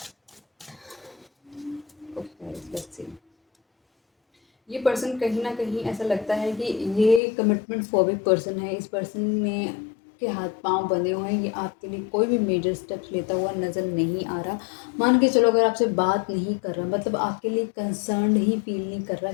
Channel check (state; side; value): drops out; right; at 7.2 s